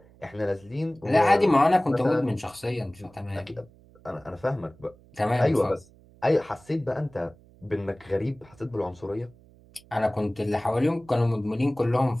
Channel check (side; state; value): right; noise; hum, 26 dB below the sound